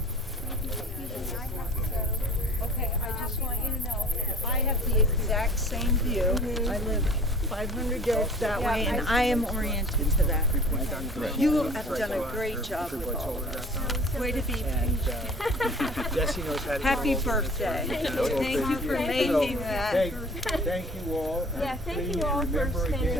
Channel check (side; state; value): both; normal; correlation 0.47